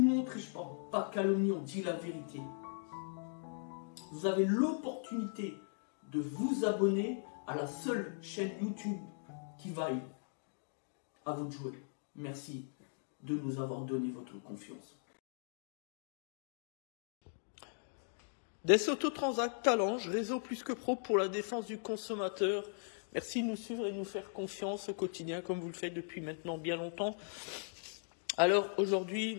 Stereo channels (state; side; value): silent; right; digital silence